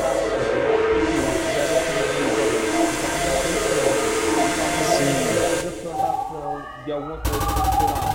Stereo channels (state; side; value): identical; both; correlation 1.00